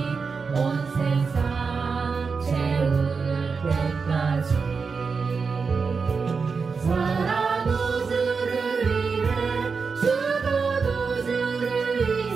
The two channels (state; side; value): quieter; left; 5.1 dB